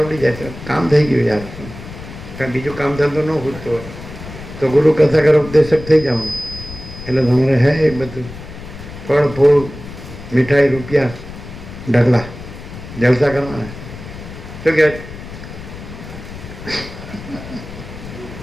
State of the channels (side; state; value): left; noise; rumble, 13 dB below the sound